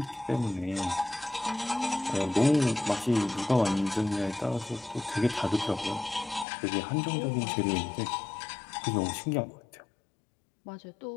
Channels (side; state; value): right; drops out; at 6.5 s